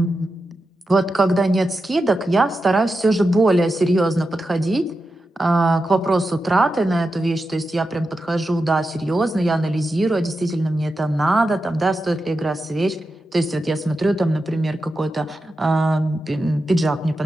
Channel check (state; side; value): normal; both; correlation 0.90